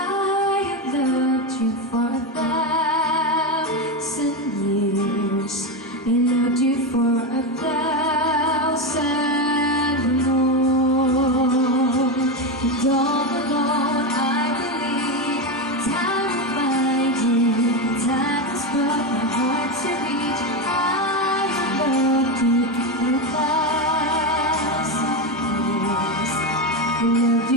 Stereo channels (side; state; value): both; normal; correlation 0.13